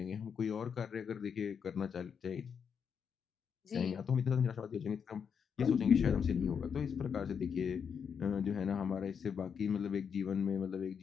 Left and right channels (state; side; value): quieter; right; 6.9 dB